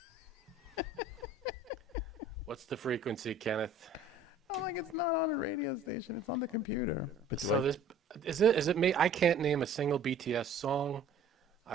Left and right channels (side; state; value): left; quieter; 3.1 dB